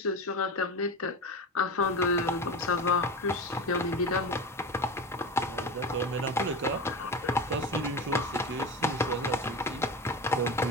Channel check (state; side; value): normal; both; correlation 0.26